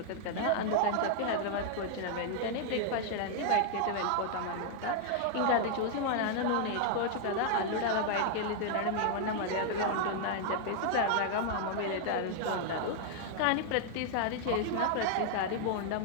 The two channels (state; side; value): different; both; correlation 0.00